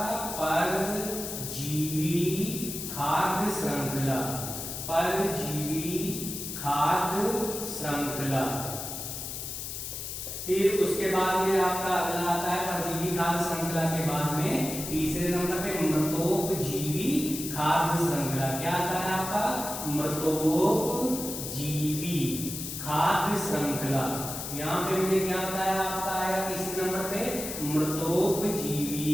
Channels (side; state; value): left; noise; hiss, 6 dB below the sound